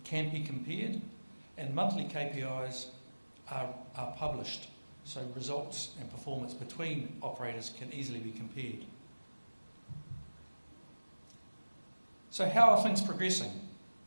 can be compared, and monthly KPIs are published, so results and performance between operators can easily be compared. So how are things progressing?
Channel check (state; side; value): inverted; both; correlation -1.00